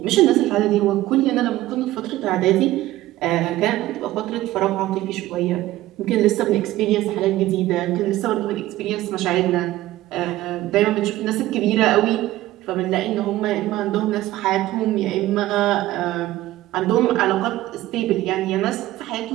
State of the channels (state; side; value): quieter; left; 15.9 dB